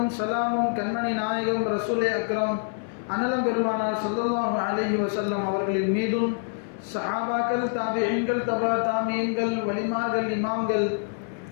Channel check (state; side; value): silent; right; 61 dB below the other